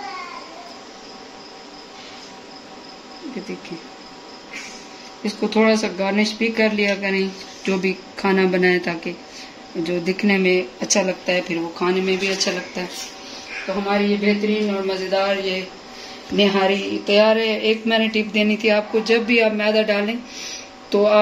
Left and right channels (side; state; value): both; identical; correlation 1.00